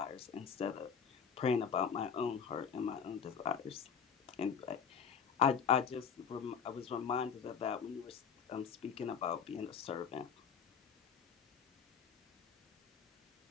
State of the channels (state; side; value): quieter; right; 6.8 dB